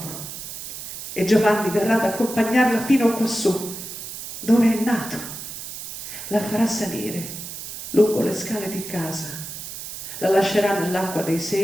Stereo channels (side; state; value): right; noise; hiss, 9 dB below the sound